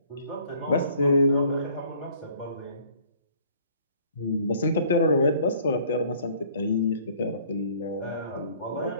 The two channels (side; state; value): both; inverted; correlation -0.57